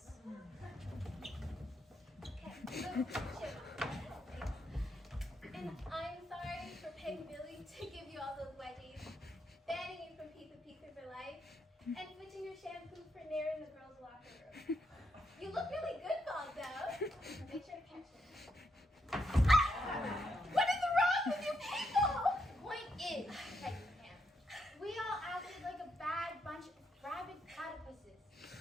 And I'm sorry for paying Billy to give you all those wedgies, banning you from Pizza Pizza for life, and switching your shampoo for Nair in the girls' locker room. You look really good, Bob, though. Make sure to catch it. What is wrong with you people? Point is, Peggy Pam, we all acted like a bad bunch of rabid platypuses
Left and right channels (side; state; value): both; normal; correlation 0.79